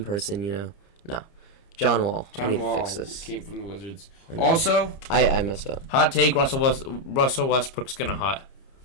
person, No. John Wall. I need to fix this. Came from the Wizards. Also... I messed up. Hot take, Russell Westbrook's gonna hot.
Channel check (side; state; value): right; late; 30 ms